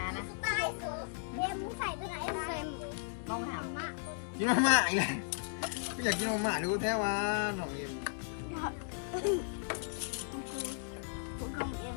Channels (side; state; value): right; silent; digital silence